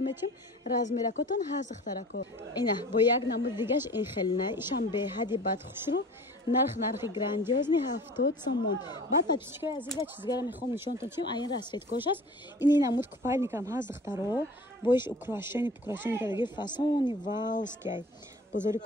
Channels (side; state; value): both; normal; correlation 0.43